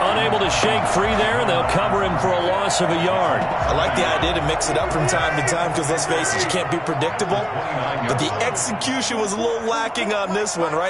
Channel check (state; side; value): identical; both; correlation 1.00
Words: to shake free there, and they'll cover him for a loss of a yard. I like the idea to mix it up from time to time because, let's face it, you can't be predictable. But the execution was a little lacking on this one,